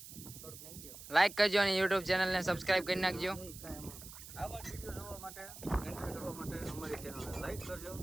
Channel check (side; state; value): right; noise; hiss, 14 dB below the sound